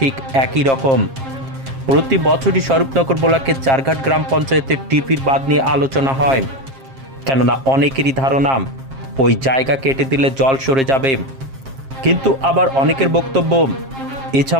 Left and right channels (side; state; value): left; late; 7.5 ms